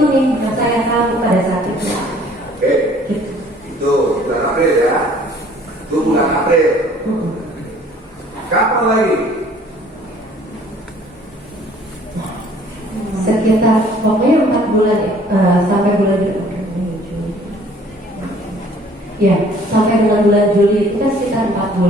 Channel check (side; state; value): both; normal; correlation 0.55